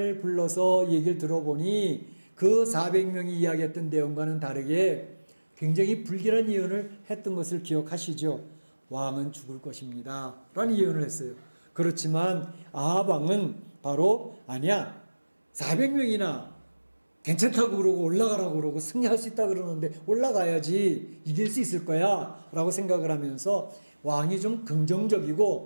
불러서 얘기를 들어보니 그 400명이 이야기했던 내용과는 다르게 굉장히 불길한 예언을 했던 것을 기억하시죠. 왕은 죽을 것입니다. 라는 예언을 했어요. 그렇지만 아합 왕은 바로 아니야. 400명이나 괜찮다고 그러고 올라가라고 그러고 승리할 수 있다 그러는데 올라가야지 이길 수 있을 거야 라고 생각을 하면서 왕이 좀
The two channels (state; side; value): inverted; both; correlation -1.00